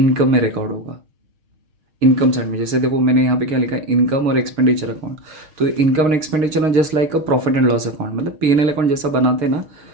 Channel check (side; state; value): left; late; 6.4 ms